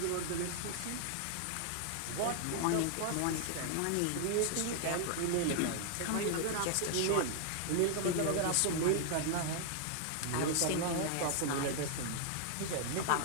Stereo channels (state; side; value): different; both; correlation 0.00